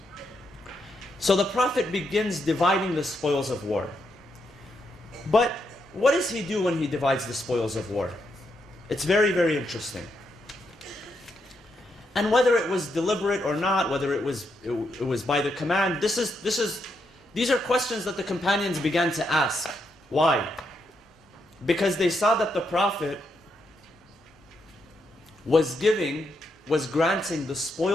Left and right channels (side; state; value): both; normal; correlation 0.80